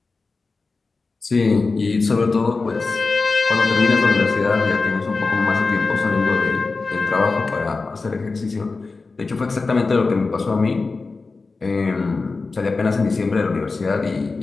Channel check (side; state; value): right; quieter; 4.0 dB